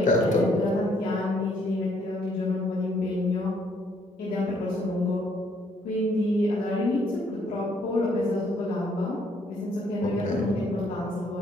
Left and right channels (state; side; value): normal; both; correlation 0.67